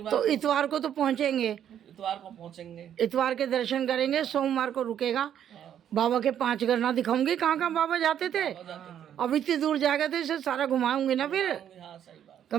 तो इतवार को तो पहुँचेंगे, इतवार को पहुंचेंगे। इतवार के दर्शन करेंगे, सोमवार को रुकेगा। हाँ, बाबा के 5 गरना दिखाऊंगी, कहाँ कहाँ बाबा जाते थे। हो जाते थे। अब इतनी दूर जाएगा तो इसे सारा घुमाऊंगी ना फिर। हाँ सही बात।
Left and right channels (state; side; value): quieter; left; 9.8 dB